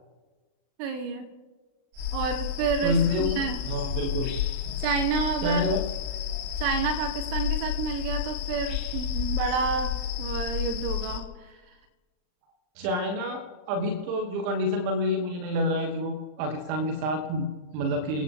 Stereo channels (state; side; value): late; left; 39 ms